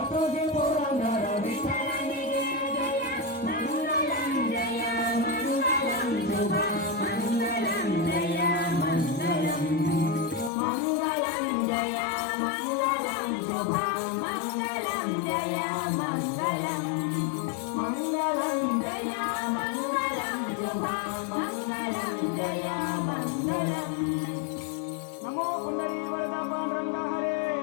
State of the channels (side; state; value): right; drops out; at 10.5 s